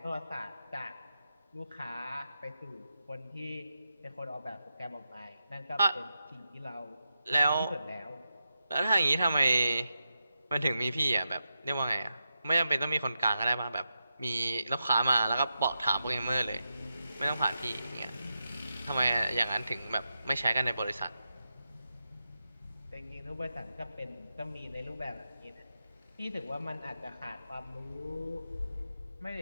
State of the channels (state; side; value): inverted; both; correlation -0.88